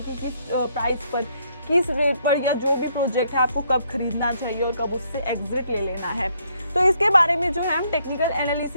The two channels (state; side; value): inverted; both; correlation -0.71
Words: कि किस प्राइस पर, किस रेट पर या जो भी प्रोजेक्ट है आपको कब खरीदना चाहिए और कब उससे एग्जिट ले लेना है। तो इसके बारे में जो है हम टेक्निकल